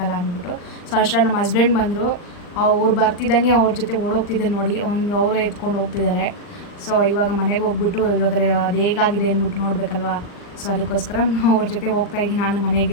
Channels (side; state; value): right; late; 39 ms